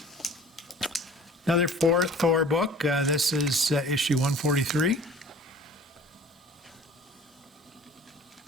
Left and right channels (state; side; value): normal; both; correlation 0.47